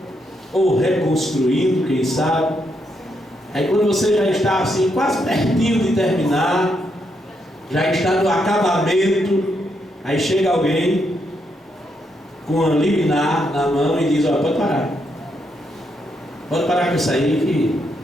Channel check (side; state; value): both; normal; correlation 0.79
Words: ou reconstruindo, quem sabe. Aí quando você já está assim, quase pertinho de terminar, já está no acabamento, aí chega alguém com uma liminar na mão e diz: ó, pode parar com isso aí, que